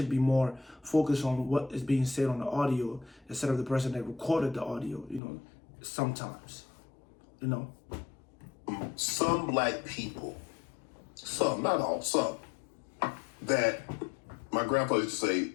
be more focused on what is being said on the audio instead of the person that recorded the audio, you know, sometimes, you know. Some black people, some, not all, some, that my grandpa used to say,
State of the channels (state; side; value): drops out; right; at 5.2 s